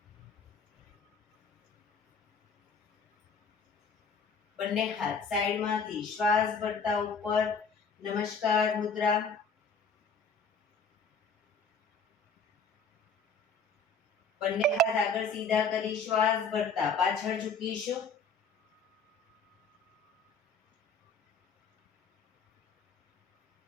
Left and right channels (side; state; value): right; quieter; 4.1 dB